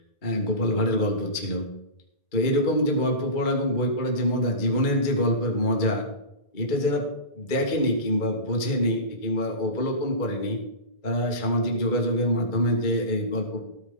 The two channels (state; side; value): late; right; 2.2 ms